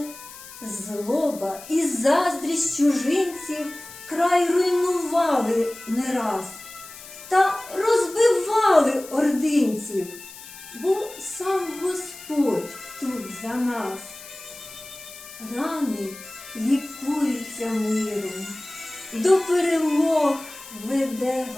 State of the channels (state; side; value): noise; left; hiss, 16 dB below the sound